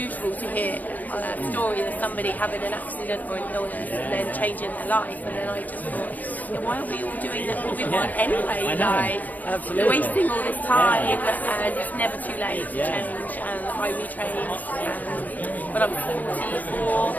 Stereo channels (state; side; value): late; right; 0.081 ms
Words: to hear a story of somebody having an accident or an illness and then changing their life. And then I just thought, why are we all doing what we want anyway? I know. Absolutely. We're wasting all this time, and it's never too late to change. And I retrained when I was 44,